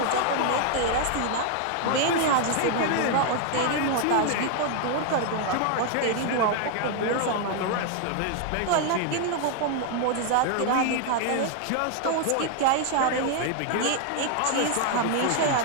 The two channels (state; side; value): different; both; correlation 0.00